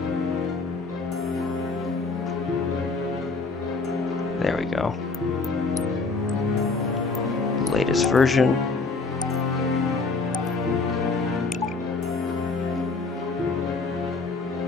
There we go. Latest version.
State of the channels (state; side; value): quieter; right; 3.9 dB